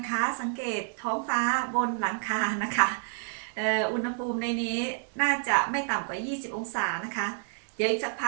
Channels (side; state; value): left; silent; digital silence